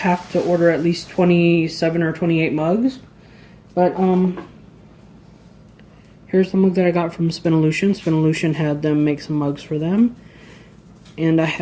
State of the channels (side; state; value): both; identical; correlation 1.00